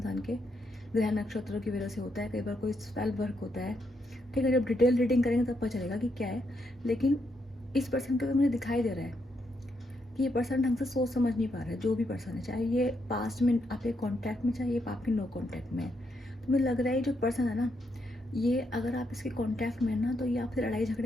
के, ग्रह नक्षत्रों की वजह से होता है, कई बार कोई स्पेल वर्क होता है, ठीक है। जब डिटेल रीडिंग करेंगे तब पता चलेगा कि क्या है, लेकिन इस पर्सन के ऊपर मुझे दिखाई दे रहा है कि ये पर्सन ढंग से सोच समझ नहीं पा रहा है, जो भी पर्सन है, चाहे ये पास्ट में आपके कॉन्टैक्ट में, चाहे ये आपके नो कॉन्टैक्ट में है। तो मुझे लग रहा है जो पर्सन है ना, ये अगर आप इसके कॉन्टैक्ट में है ना, तो ये आपसे लड़ाई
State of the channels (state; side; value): normal; both; correlation 0.79